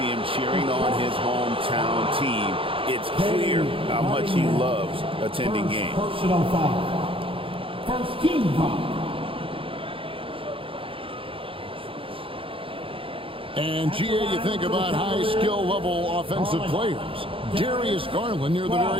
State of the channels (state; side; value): late; left; 0.26 ms